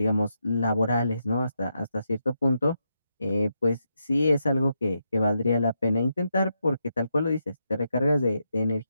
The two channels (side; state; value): both; inverted; correlation -0.83